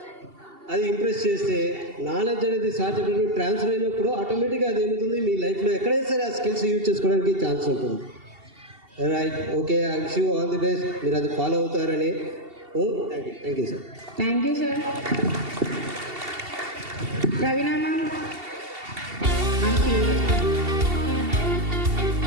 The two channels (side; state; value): left; late; 2.7 ms